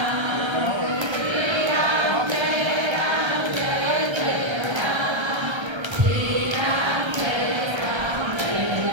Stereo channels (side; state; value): left; late; 1.3 ms